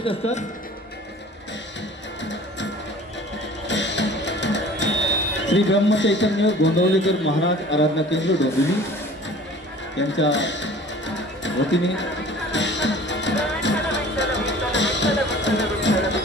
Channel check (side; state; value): both; normal; correlation 0.46